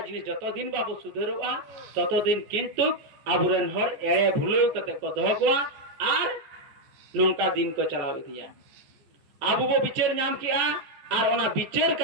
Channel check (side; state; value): left; late; 14 ms